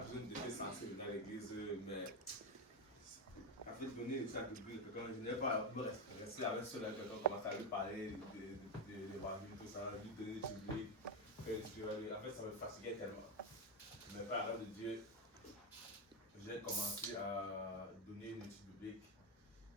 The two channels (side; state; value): both; normal; correlation 0.09